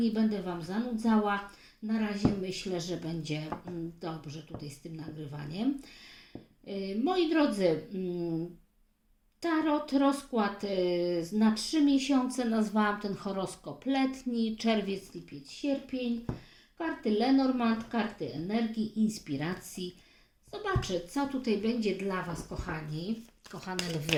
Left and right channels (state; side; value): identical; both; correlation 1.00